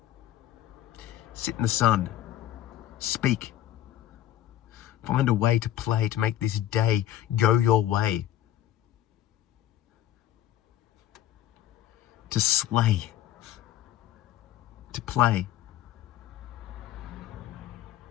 Sit in the sun. Speak. Find a way to play, to make this day go your way. To slay. To play.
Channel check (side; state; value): right; quieter; 12.3 dB